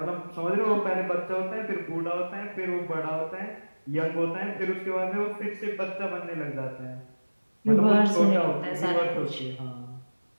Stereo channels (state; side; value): inverted; both; correlation -1.00